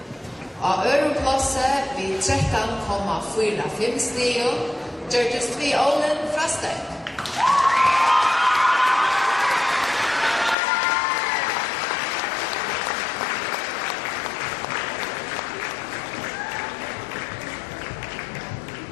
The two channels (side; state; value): right; drops out; at 10.6 s